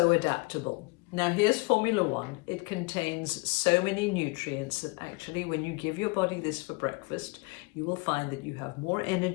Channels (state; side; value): quieter; right; 28.3 dB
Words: adaptable. Now here's Formula One. It contains so many nutrients that actually when you give your body this for breakfast, you will find that you have more